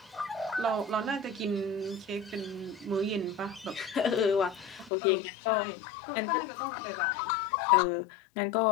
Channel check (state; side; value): drops out; right; at 4.9 s